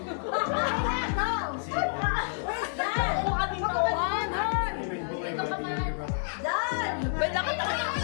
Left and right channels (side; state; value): right; silent; 57 dB below the other